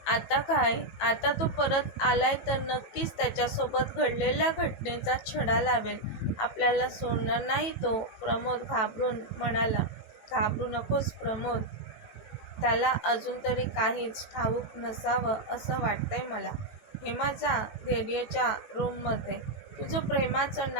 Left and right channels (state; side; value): late; right; 18 ms